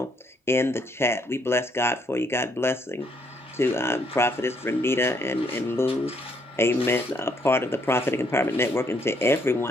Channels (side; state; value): both; normal; correlation 0.70